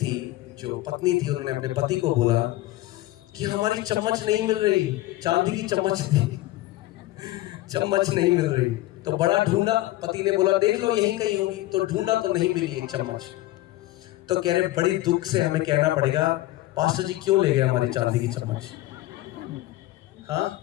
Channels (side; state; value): right; quieter; 17.1 dB